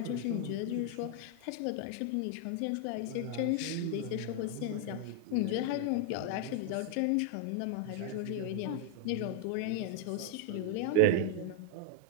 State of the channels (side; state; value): both; different; correlation 0.00